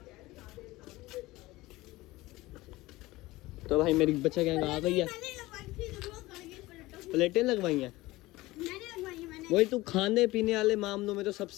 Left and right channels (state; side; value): quieter; right; 19.3 dB